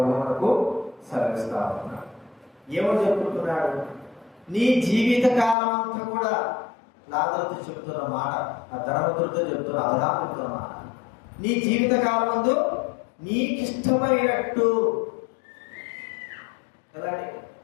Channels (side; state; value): right; drops out; at 5.6 s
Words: మనకు సెలవిస్తా ఉన్నాడు. ఏమో చెప్పుకుంటున్నాడు? నీ జీవిత కాలం అంతా కూడా లాజరుతో చెప్తున్న మాట, ఆ ధనవంతుడితో చెప్తున్న అబ్రహాముతో మాట. నీ జీవిత కాలం ముందు నీకిష్టమైనట్టు. కదండి,